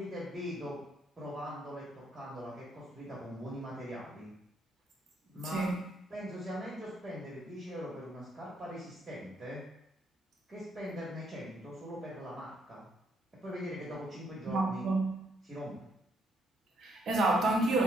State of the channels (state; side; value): normal; both; correlation 0.72